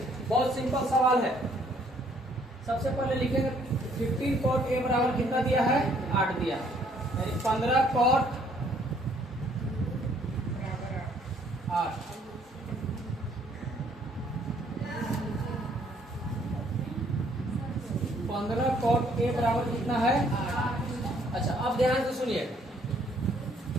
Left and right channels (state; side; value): normal; both; correlation 0.64